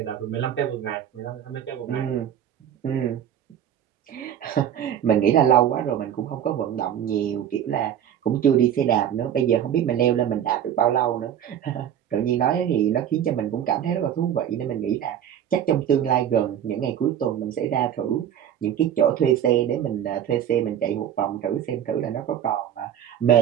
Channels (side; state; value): left; quieter; 9.9 dB